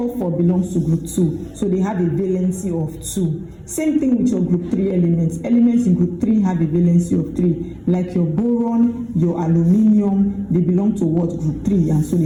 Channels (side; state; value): both; identical; correlation 1.00